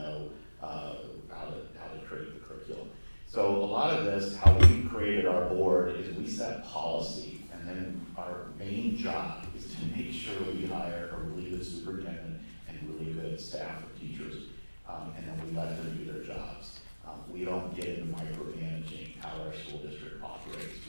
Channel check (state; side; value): inverted; both; correlation -1.00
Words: how to create the curriculum. So a lot of this, how we created our board, is we set policy, and then our main job is to make sure we hire a really good superintendent and really good staff of teachers, and then we let them do their jobs. We don't get into micromanaging how our school district operates.